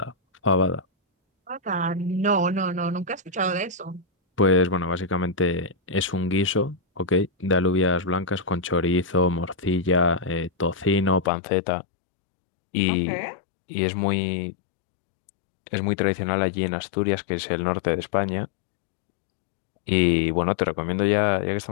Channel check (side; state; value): right; drops out; at 11.3 s